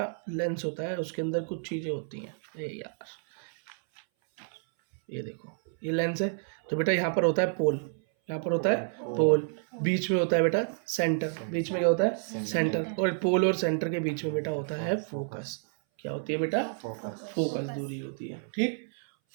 लेंस होता है उसके अंदर कुछ चीजें होती हैं। यार ये देखो ये लेंस है तो बेटा यहाँ पर होता है पोल, यहाँ पर होता है पोल, बीच में होता है बेटा सेंटर, बीच में क्या होता है सेंटर, और पोल और सेंटर के बीच में बेटा होता है फोकस। क्या होती है बेटा, फोकस दूरी होती है, ठीक।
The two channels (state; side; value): silent; left; 58 dB below the other